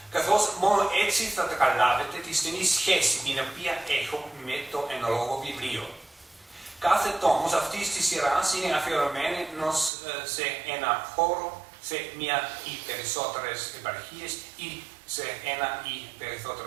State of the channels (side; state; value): left; drops out; at 9.9 s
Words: καθώς μόνο έτσι θα καταλάβετε τη στενή σχέση την οποία έχω με το εν λόγω βιβλίο. Κάθε τόμος αυτής της σειράς είναι αφιερωμένος σε ένα χώρο, σε μία ή περισσότερες επαρχίες ή σε ένα ή